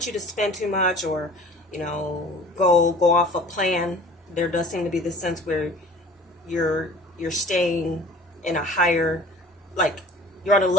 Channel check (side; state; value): both; normal; correlation 0.46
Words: you to spend too much, or go off a plan. There does seem to be this sense where you're staying in a higher, like you're on a